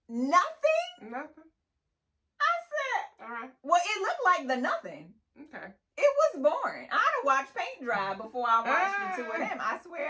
Nothing? Nothing. I said. All right. Well, it looked like the nothing. Okay. It was boring. I'd have watched paint dry before I watched the two of them. I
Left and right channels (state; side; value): identical; both; correlation 1.00